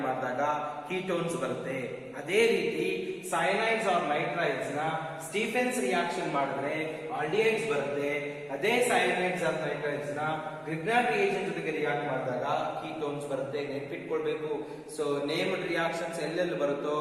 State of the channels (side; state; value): both; identical; correlation 1.00